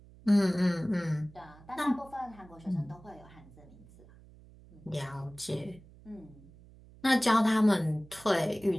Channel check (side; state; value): right; noise; hum, 23 dB below the sound